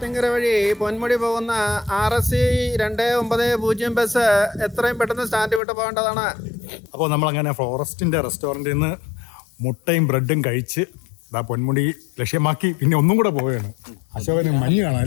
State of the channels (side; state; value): right; drops out; at 5.6 s